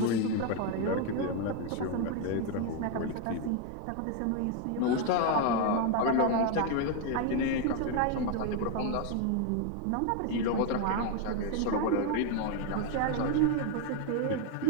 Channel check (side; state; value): both; different; correlation 0.01